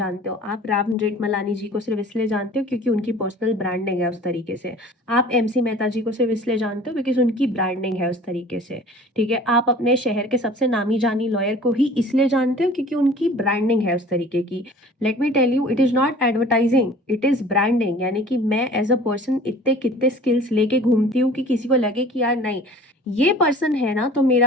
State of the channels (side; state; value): both; normal; correlation 0.46